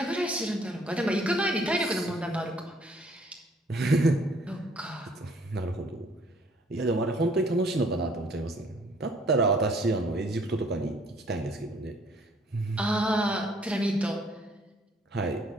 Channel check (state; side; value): normal; both; correlation 0.60